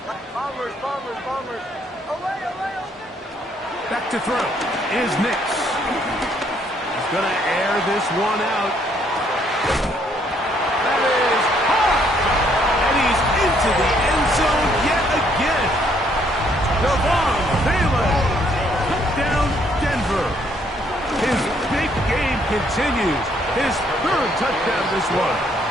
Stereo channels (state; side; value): normal; both; correlation 0.68